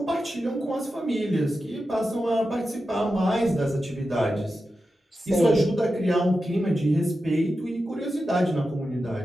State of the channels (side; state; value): both; normal; correlation 0.91